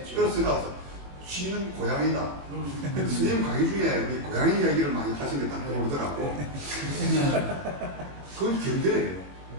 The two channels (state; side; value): late; left; 21 ms